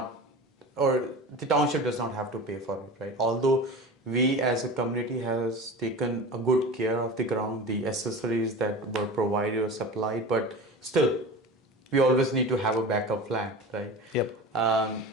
or the township does not have to pay for it, right? Although we as a community has taken a good care of the ground, the accessories that were provided or supplied, but still, we always need to have a backup plan, right? Yep.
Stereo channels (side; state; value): both; normal; correlation 0.33